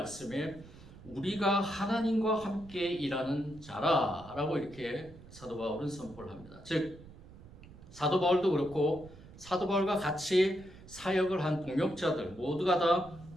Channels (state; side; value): noise; right; rumble, 19 dB below the sound